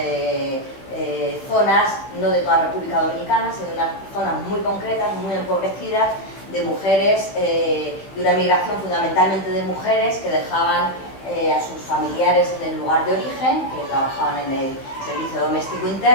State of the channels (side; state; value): right; late; 15 ms